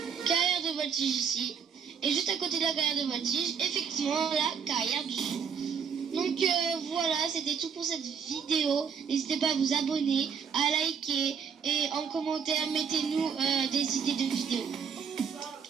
Carrière de voltige ici. Et juste à côté de la carrière de voltige, effectivement, la carrière du son. Donc voilà, c'était tout pour cette vidéo. N'hésitez pas à vous abonner, à liker et en commentaire, mettez-nous des idées de vidéos.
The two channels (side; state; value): left; quieter; 6.7 dB